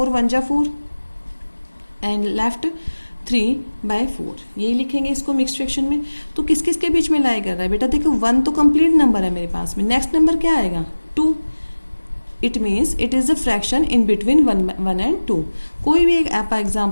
1 जा 4 एंड लेफ्ट 3/4, यही लिखेंगे इसको मिक्स्ड फ्रैक्शन में। तो किस किस के बीच में लाई कर रहा है बेटा, देखो 1 तो कंप्लीट नंबर है मेरे पास में, नेक्स्ट नंबर क्या आएगा 2। It means it is the fraction in between 1 and 2। कोई भी एक आप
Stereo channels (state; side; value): inverted; both; correlation -1.00